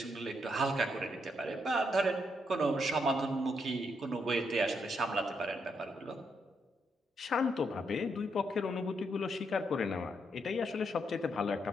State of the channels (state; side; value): normal; both; correlation 0.78